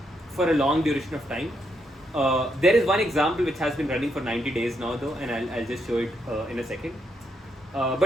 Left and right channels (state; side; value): normal; both; correlation 0.78